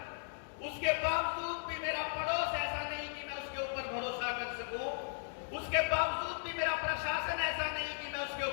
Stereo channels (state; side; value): silent; right; digital silence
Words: उसके बावजूद भी मेरा पड़ोस ऐसा नहीं कि मैं उसके ऊपर भरोसा कर सकूं, उसके बावजूद भी मेरा प्रशासन ऐसा नहीं कि मैं उसके